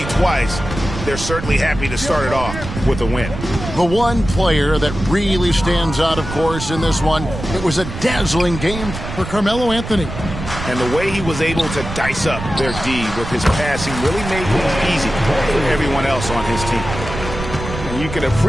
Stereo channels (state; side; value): noise; right; rumble, 8 dB below the sound